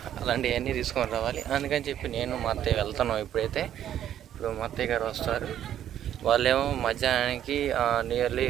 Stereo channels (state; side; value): quieter; left; 10.8 dB